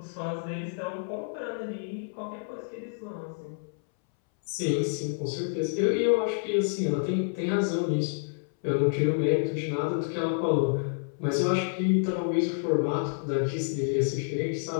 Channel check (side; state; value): right; silent; 59 dB below the other